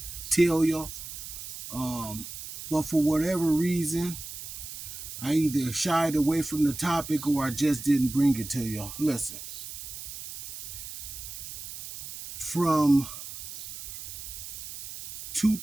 tell y'all, but for whatever reason, I either shied away from the topic or I just didn't bring it to y'all. Listen, from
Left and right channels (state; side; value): noise; right; hiss, 10 dB below the sound